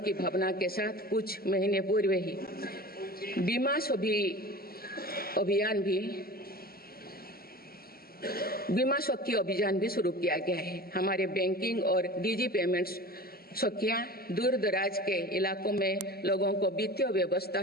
भावना के साथ कुछ महीने पूर्व ही बीमा सखी अभियान भी शुरू किया गया है। हमारे बैंकिंग और डिजी पेमेंट्स सखियां दूर दराज के इलाकों में लोगों को वित्तीय व्यवस्था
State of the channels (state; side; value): normal; both; correlation 0.36